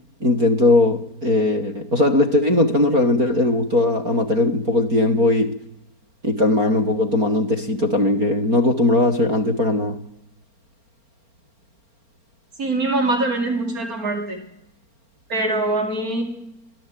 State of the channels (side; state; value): left; late; 4.4 ms